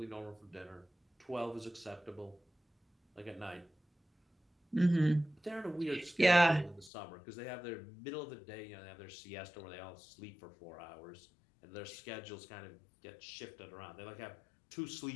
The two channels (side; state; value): right; drops out; at 6.9 s